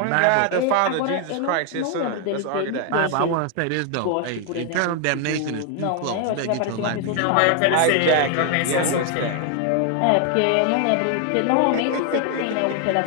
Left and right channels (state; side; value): different; both; correlation 0.00